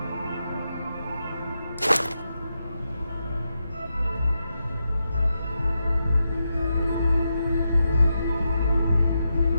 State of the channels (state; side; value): inverted; both; correlation -0.86